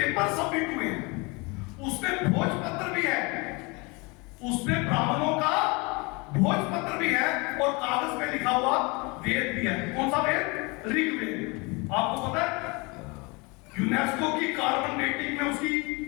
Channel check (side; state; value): right; quieter; 27.8 dB